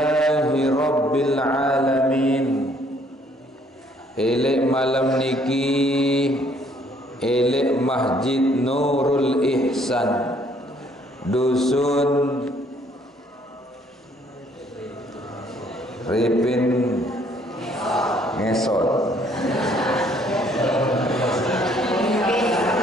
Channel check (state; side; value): normal; both; correlation 0.64